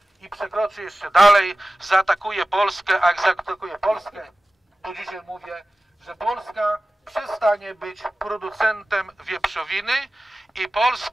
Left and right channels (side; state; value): both; normal; correlation 0.96